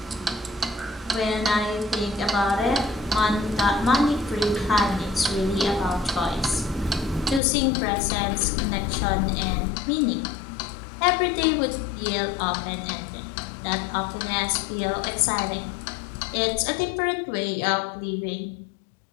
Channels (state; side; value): drops out; right; at 7.4 s